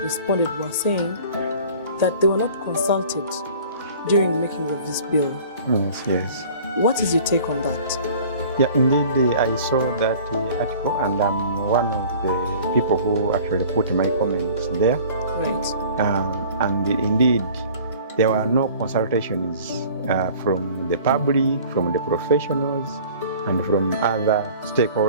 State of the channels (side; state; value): both; inverted; correlation -0.47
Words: responded were saying that they were not consulted during the making of this bill. Yes. What is your take on that? Yeah, indeed, I saw that article, and I'm one of the people who actually put my comments there. Right. And indeed, there were no consultations from the public, from the professionals, and from other